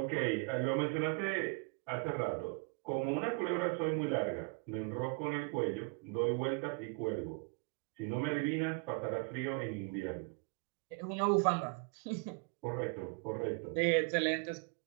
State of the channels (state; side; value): quieter; left; 33.5 dB